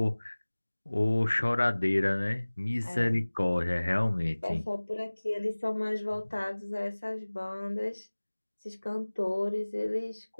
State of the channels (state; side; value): inverted; both; correlation -1.00